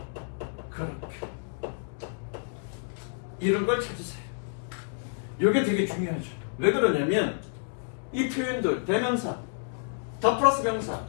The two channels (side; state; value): right; silent; digital silence